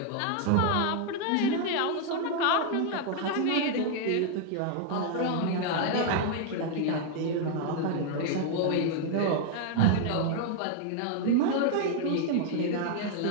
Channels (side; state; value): both; different; correlation 0.00